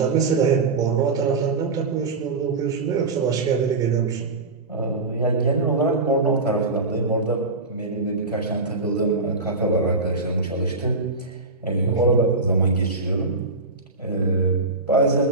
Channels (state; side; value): quieter; left; 3.6 dB